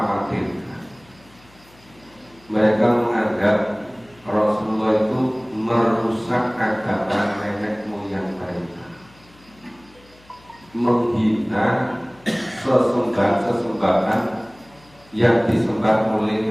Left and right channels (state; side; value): noise; left; hum, 28 dB below the sound